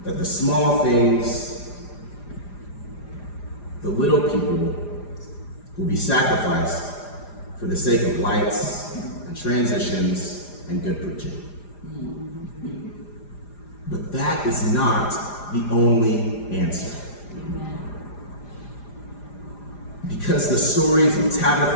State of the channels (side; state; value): right; late; 4.9 ms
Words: That the small things, the little people, will be sacrificed for the sake of lights and transitions and good preaching. But that is not the only answer. Because the stories of